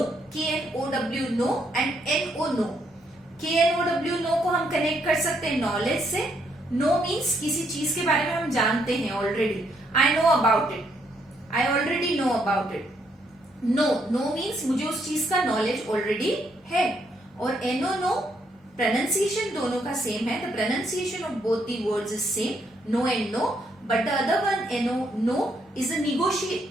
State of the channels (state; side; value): normal; both; correlation 0.73